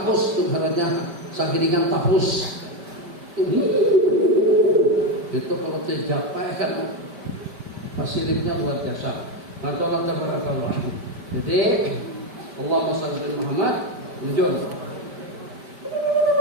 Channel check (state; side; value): late; left; 5.1 ms